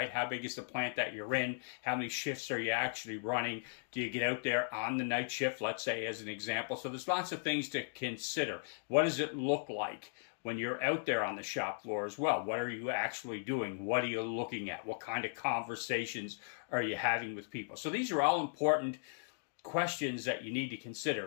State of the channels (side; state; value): right; silent; digital silence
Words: How big is the plant that you're in? How many shifts are you actually running? Do you get out there on the night shift, let's say, as an example? So there's lots of things to consider. What does it look like when you're out there on the shop floor as well? What are you actually doing? What are you looking at? What kind of conversations are you having with people? So these are all important questions that you need to